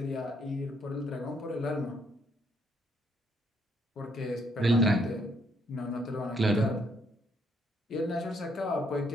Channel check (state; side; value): normal; both; correlation 0.71